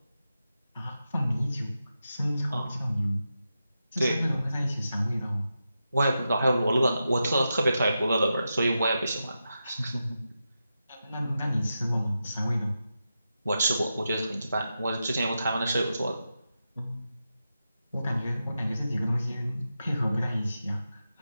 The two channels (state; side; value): inverted; both; correlation -0.89